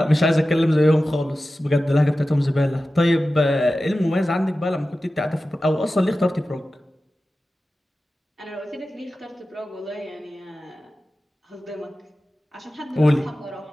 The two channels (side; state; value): both; normal; correlation 0.94